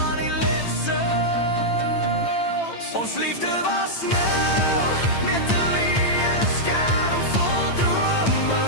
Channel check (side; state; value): right; late; 8.9 ms